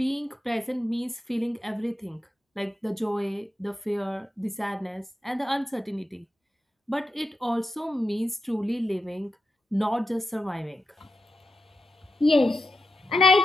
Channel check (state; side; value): normal; both; correlation 0.89